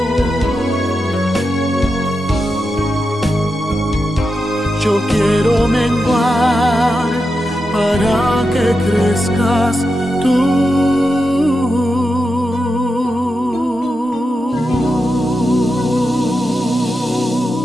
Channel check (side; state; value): both; normal; correlation 0.88